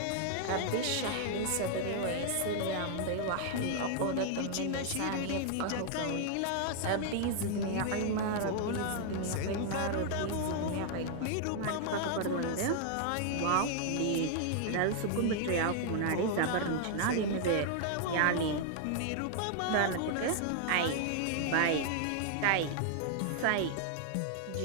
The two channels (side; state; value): both; different; correlation 0.00